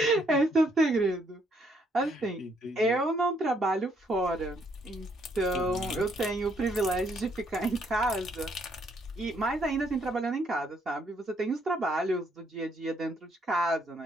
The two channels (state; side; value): normal; both; correlation 0.70